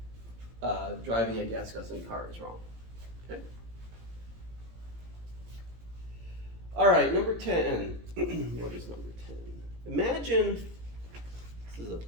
driving a gas guzzling car is wrong. Okay? All right, number 10. What is number 10? Imagine, this is a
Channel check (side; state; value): left; late; 17 ms